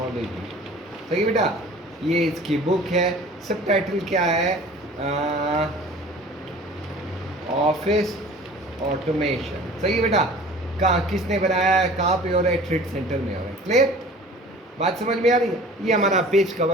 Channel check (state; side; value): normal; both; correlation 0.45